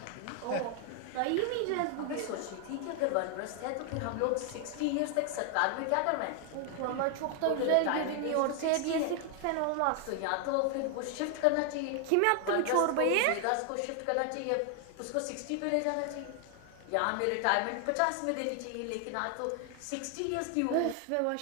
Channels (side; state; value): both; different; correlation 0.00